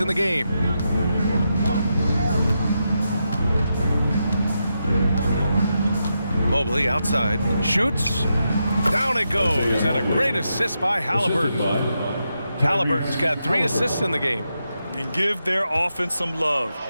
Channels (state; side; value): inverted; both; correlation -0.85